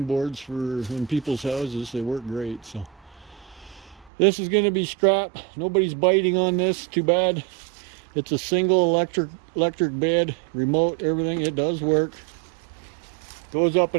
boards for in people's houses. They work great. So this is going to be scrap. Nobody's biting on this. Too bad. It's a single electric bed, remote, everything. It does work. Goes up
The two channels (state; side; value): drops out; left; at 4.1 s